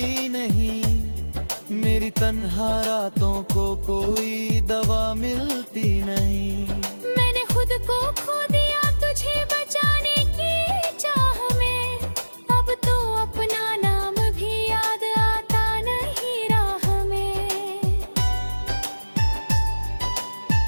नहीं, मेरी तन्हा रातों को कोई दवा मिलती नहीं। मैंने खुद को खो दिया तुझे बचाने की चाह में, अब तो अपना नाम भी याद आता नहीं राह में।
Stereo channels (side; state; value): both; inverted; correlation -1.00